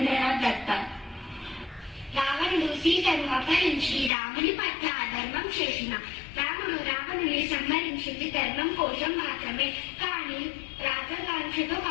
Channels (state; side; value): drops out; right; at 4.1 s